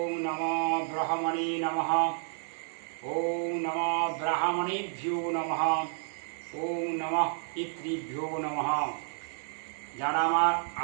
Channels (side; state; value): left; silent; 57 dB below the other